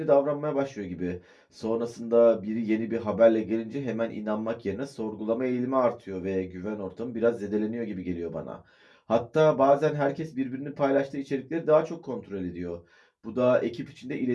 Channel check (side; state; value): both; identical; correlation 1.00